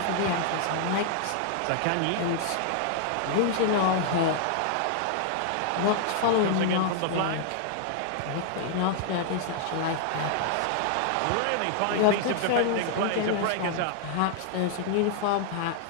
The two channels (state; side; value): different; both; correlation -0.01